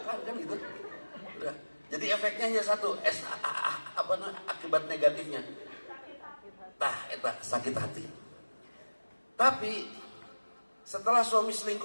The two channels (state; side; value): inverted; both; correlation -1.00